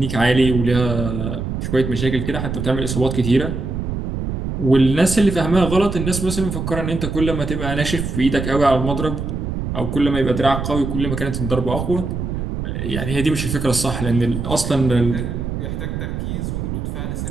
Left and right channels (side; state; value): right; noise; rumble, 4 dB below the sound